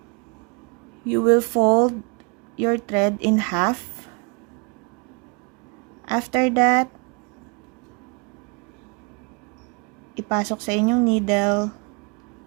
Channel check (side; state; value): left; quieter; 32.2 dB